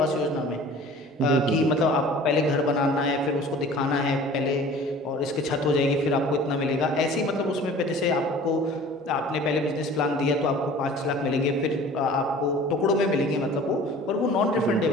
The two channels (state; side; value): normal; both; correlation 0.45